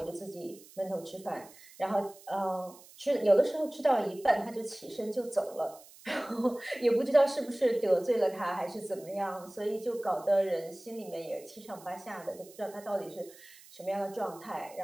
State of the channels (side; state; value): right; noise; hiss, 22 dB below the sound